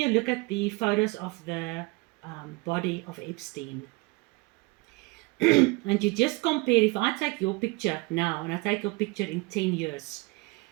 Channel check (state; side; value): quieter; left; 25.2 dB